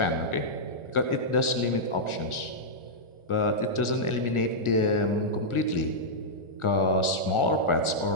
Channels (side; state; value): right; late; 1.4 ms